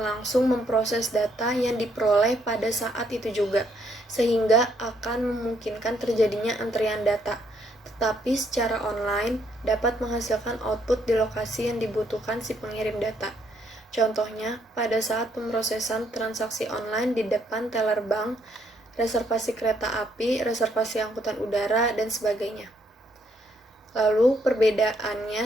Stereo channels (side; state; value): both; normal; correlation 0.71